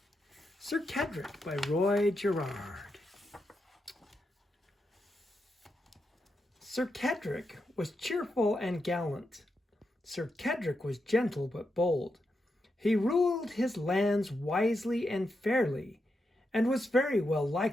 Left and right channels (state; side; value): normal; both; correlation 0.85